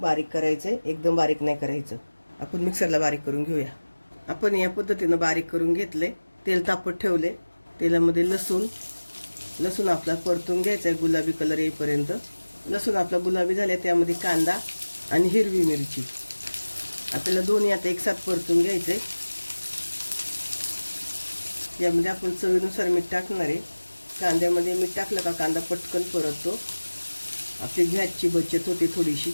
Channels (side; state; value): both; inverted; correlation -1.00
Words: करायचे, एकदम बारीक नाही करायचं. आपण मिक्सरला बारीक करून घेऊया. आपण या पद्धतीनं बारीक करून घेतले. तेल तापत ठेवले. तेलामध्ये लसूण आपला परतून घ्यायचा आहे गुलाबी कलर येईपर्यंत. लसूण आपला गुलाबी झाले, त्यामध्ये कांदा आणि हिरवी मिरची आपल्याला दोन्ही आता एकसाथ परतून घ्यायचे. यामध्ये आपण चवीनुसार मीठ टाकणार आहे. कांद्यामध्ये मीठ टाकलं का कांदा पटकन परततो, आपली गॅसची बचत होते थोडीशी.